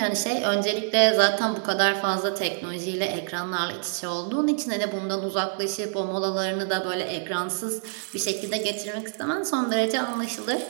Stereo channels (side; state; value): left; silent; digital silence